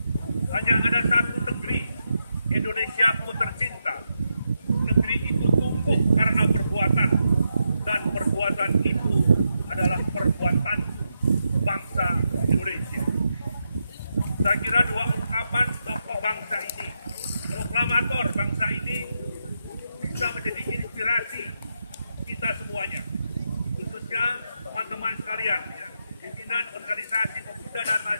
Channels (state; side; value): inverted; both; correlation -0.84